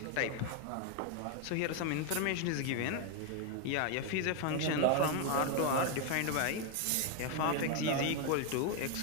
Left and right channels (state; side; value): different; both; correlation 0.01